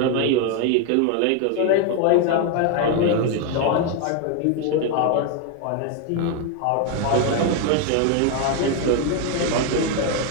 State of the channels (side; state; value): both; different; correlation 0.01